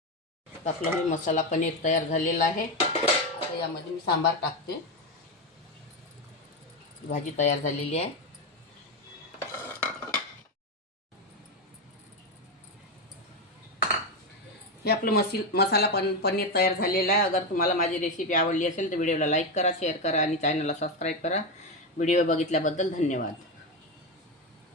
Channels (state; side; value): normal; both; correlation 0.11